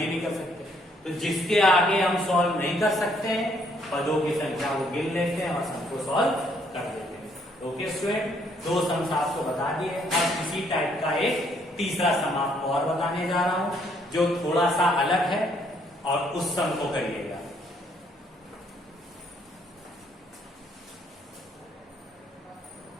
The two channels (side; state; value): both; normal; correlation 0.68